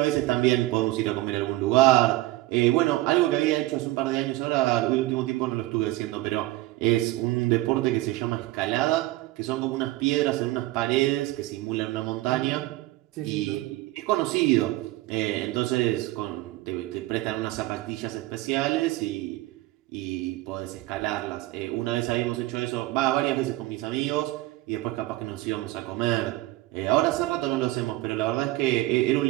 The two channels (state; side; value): quieter; left; 18.3 dB